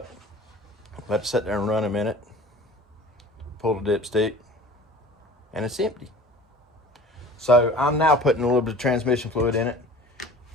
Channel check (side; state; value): both; normal; correlation 0.43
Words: let it sit there and run a minute, pull the dipstick, and it's empty. So I'm now putting a little bit of transmission fluid in it